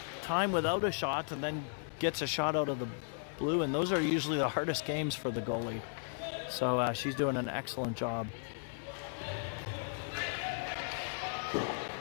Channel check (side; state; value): right; silent; digital silence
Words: time without a shot and then gets a shot out of the blue, and those are usually the hardest games for the goalie. So she's doing an excellent job.